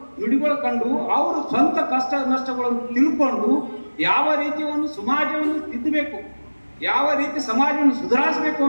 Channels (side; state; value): both; inverted; correlation -1.00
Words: ನುಡಿಗಳು ಕಂಡು, ಅವರು ಸ್ವಂತ ಕಷ್ಟ ನಷ್ಟಗಳನ್ನು ತಿಳ್ಕೊಂಡು ಯಾವ ರೀತಿ ಒಂದು ಸಮಾಜವನ್ನು ತಿದ್ದಬೇಕು, ಯಾವ ರೀತಿ ಸಮಾಜವನ್ನು ಸುಧಾರಿಸಬೇಕು